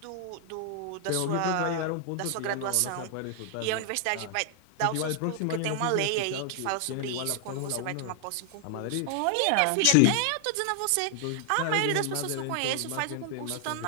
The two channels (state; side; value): different; both; correlation 0.00